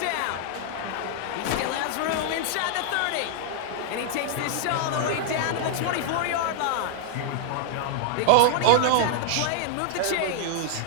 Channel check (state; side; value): different; both; correlation 0.00